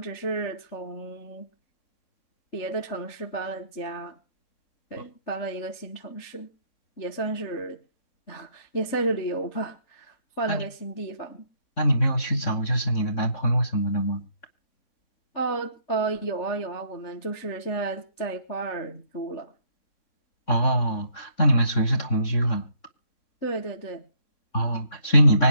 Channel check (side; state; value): right; late; 3.6 ms